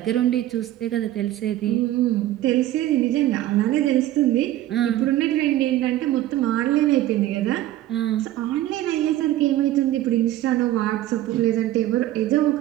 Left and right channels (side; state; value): left; quieter; 14.2 dB